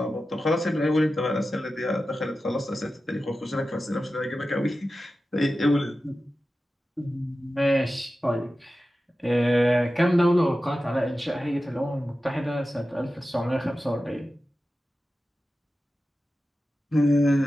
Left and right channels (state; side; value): normal; both; correlation 0.93